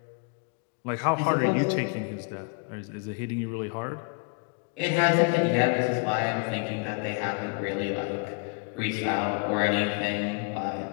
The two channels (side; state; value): right; quieter; 36.0 dB